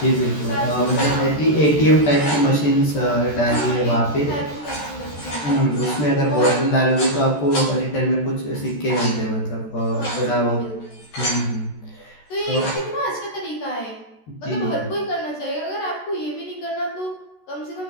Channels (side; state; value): right; late; 14 ms